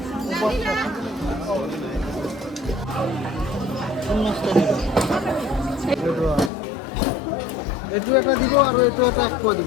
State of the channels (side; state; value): right; drops out; at 6.5 s